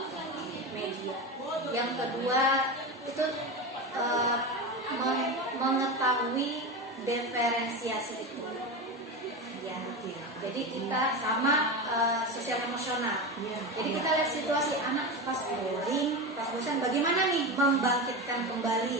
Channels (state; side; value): normal; both; correlation 0.21